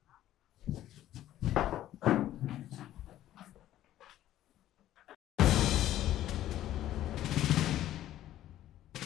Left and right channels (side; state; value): right; quieter; 13.1 dB